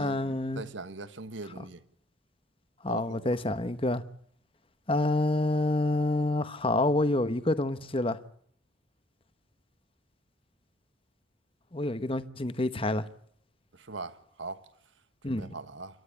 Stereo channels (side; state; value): both; normal; correlation 0.61